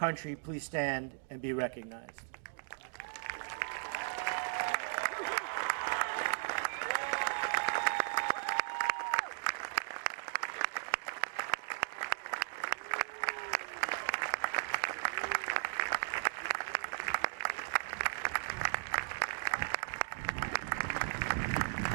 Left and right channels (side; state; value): left; silent; digital silence